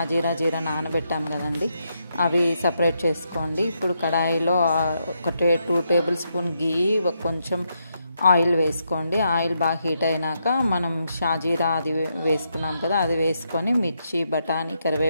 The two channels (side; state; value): both; inverted; correlation -0.81